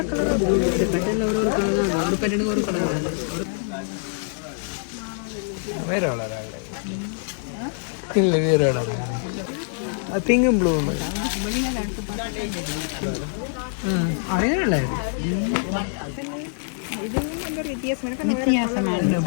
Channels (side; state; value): right; silent; digital silence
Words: வேற வளர இல்லை வேற வளர பிங்கும் ப்ளூ அதே நல்லா